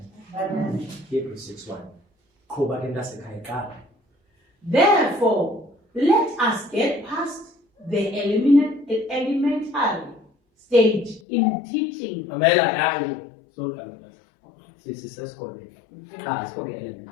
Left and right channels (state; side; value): drops out; right; at 11.2 s